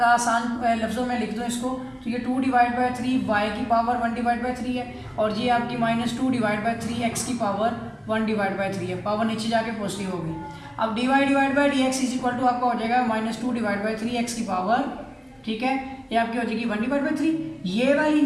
आसान लफ्ज़ों में लिख दूँ इसको, तो ये 2 डिवाइड बाई 3 y की पावर 1 डिवाइड बाई 3 है और ये आपकी -2 डिवाइड बाई 3 x की पावर 1 डिवाइड बाई 3 है, पावर नीचे जाके पॉजिटिव होगी। अब dy divide by d x is equal to आपका हो जाएगा -2 डिवाइड बाई 3 x की पावर, ठीक है, ये आपकी हो जाएगी 1 डिवाइड बाई 3। ये वाली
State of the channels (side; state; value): both; identical; correlation 1.00